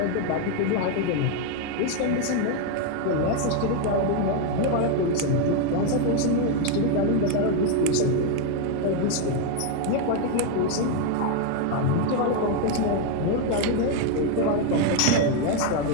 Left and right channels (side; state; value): both; different; correlation 0.01